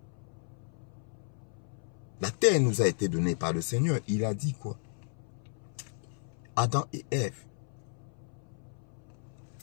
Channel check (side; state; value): right; silent; 55 dB below the other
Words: La terre nous a été donnée par le Seigneur. Il a dit quoi? Adam et Ève.